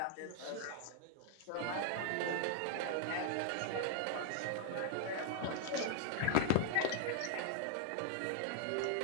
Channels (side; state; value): both; different; correlation -0.01